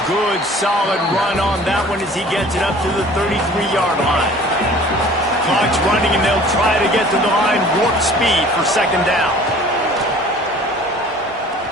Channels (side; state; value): both; normal; correlation 0.48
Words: Good, solid run on that one as he gets it up to the 33-yard line. Clock's running, and they'll try to get to the line warp speed for second down.